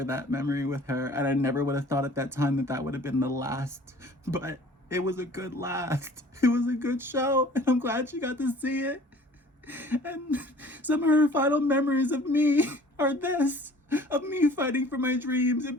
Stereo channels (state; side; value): normal; both; correlation 0.50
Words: that memory with her. And I never would have thought at that time that would have been the last. But it was a good last. It was a good show. And I'm glad she got to see it. And some of her final memories of me are this, of me fighting for my dreams and